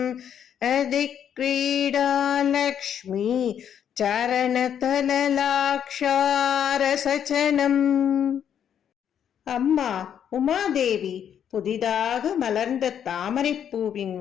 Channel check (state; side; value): quieter; right; 8.9 dB